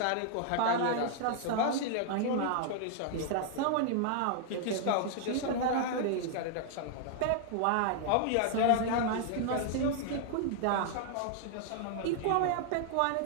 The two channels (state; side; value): different; both; correlation 0.00